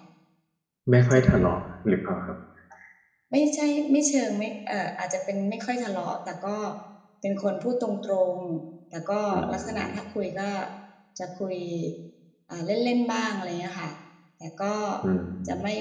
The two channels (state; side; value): identical; both; correlation 1.00